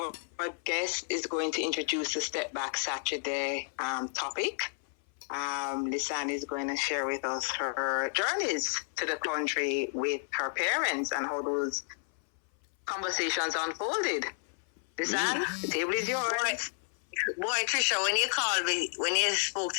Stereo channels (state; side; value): silent; right; 57 dB below the other